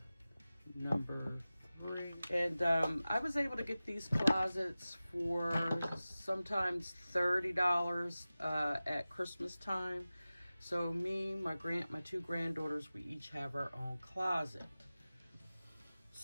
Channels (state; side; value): inverted; both; correlation -0.96